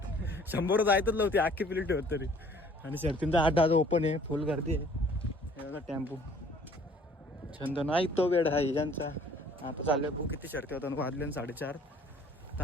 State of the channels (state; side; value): normal; both; correlation 0.55